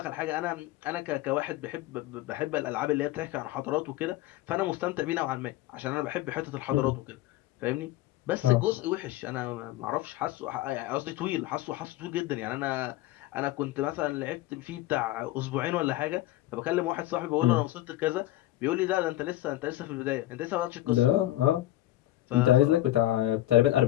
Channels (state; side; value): quieter; right; 15.5 dB